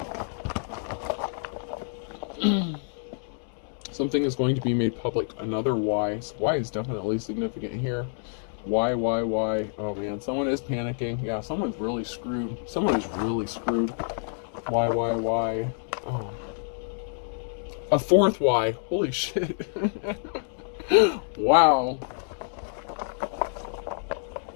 Something is going to be made public. Another Y. So Y is definitely significant here. Y. Oh man, someone is panicking. Yeah, someone's really screwed. Someone is really screwed. Y. Oh. A fourth Y. Holy shit. Wow.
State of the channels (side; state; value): right; silent; digital silence